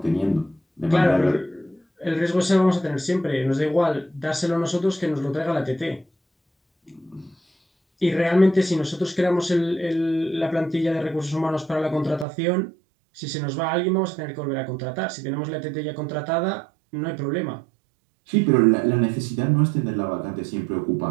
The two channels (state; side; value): drops out; left; at 12.2 s